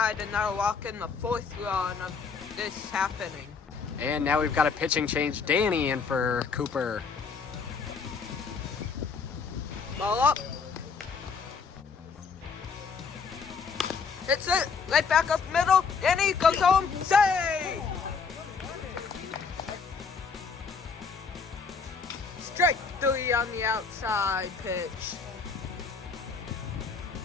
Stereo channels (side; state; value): right; quieter; 5.3 dB